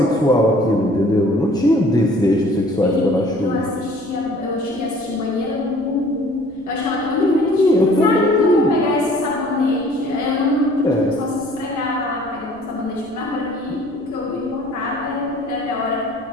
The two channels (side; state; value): left; noise; rumble, 27 dB below the sound